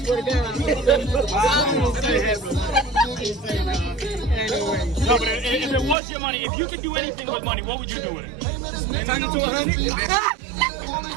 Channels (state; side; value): drops out; left; at 6.0 s